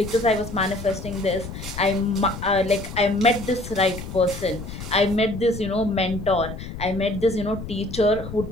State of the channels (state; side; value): noise; left; rumble, 10 dB below the sound